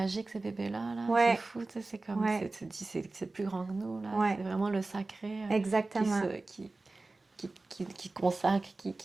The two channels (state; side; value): quieter; left; 3.3 dB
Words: ces bébés-là, là. C'est ouais, fou, c'est comme, ouais, tu te dis, c'est plus grand que nous, là. ouais, C'est vraiment le sacré qui exactement. se, qui consacre,